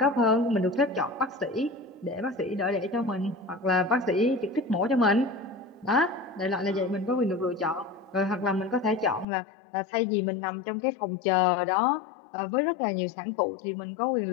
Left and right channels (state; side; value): drops out; right; at 9.2 s